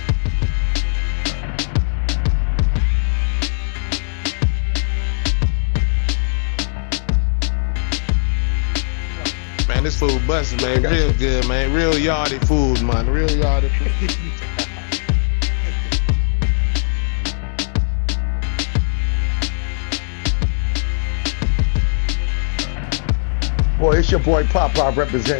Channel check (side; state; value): right; silent; digital silence